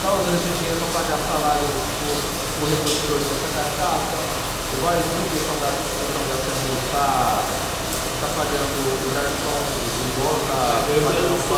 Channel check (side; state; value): both; identical; correlation 1.00